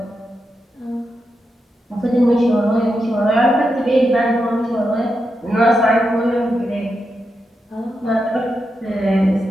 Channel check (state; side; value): normal; both; correlation 0.86